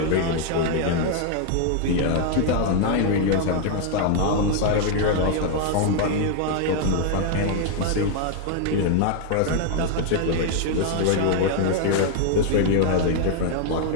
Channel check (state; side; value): different; both; correlation 0.00